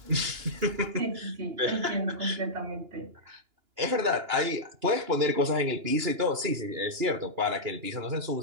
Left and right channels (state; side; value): late; left; 2.9 ms